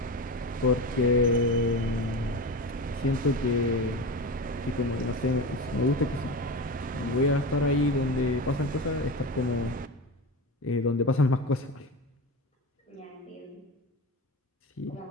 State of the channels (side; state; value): both; normal; correlation 0.24